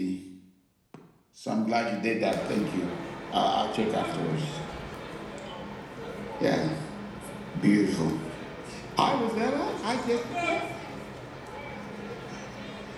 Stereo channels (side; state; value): both; identical; correlation 1.00